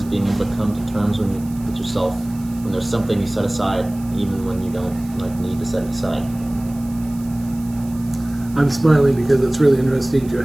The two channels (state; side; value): noise; right; hiss, 22 dB below the sound